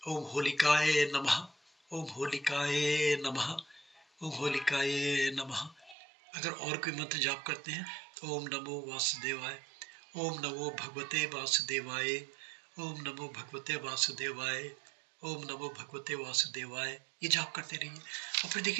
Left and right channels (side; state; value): left; drops out; at 6.0 s